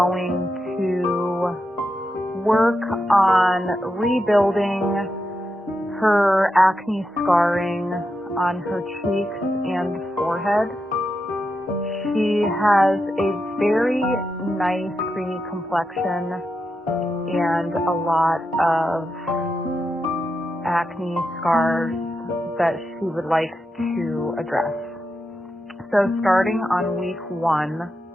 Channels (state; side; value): normal; both; correlation 0.86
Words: to work on rebuilding her acne scarring on her cheeks and forehead. She has a very nice creamy complexion and a lot of acne scars that she would like to address. So starting on week 1,